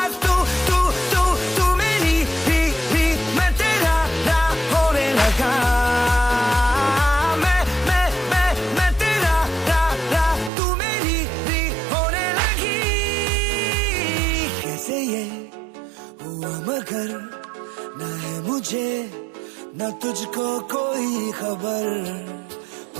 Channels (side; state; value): left; drops out; at 10.5 s